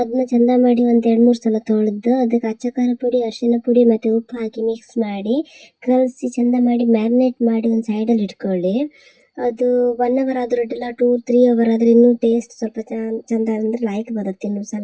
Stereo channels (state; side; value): identical; both; correlation 1.00